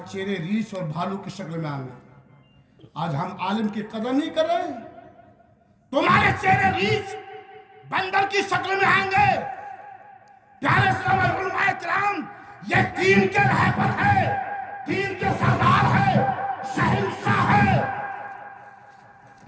चेहरे रीछ और भालू की शक्ल में आएंगे। आज हम आलिम की कदर नहीं कर रहे, तुम्हारे चेहरे रीछ बंदर की शक्ल में आएंगे। प्यारे इस्लाम और उलमाए किराम, ये दीन के रहबर है, दीन के सरदार है, शहंशाह है।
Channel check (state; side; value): identical; both; correlation 1.00